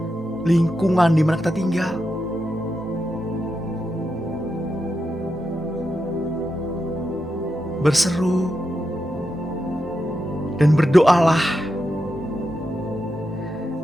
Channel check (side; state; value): both; normal; correlation 0.87